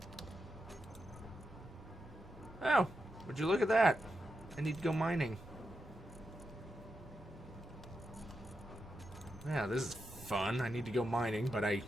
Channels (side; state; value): both; normal; correlation 0.87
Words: Oh, would you look at that? I need to go mining. Yeah, this is fun. I need to go mining, but I